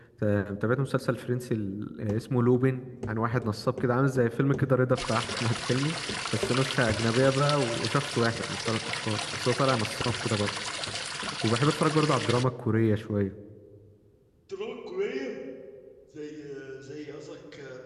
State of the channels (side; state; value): both; identical; correlation 1.00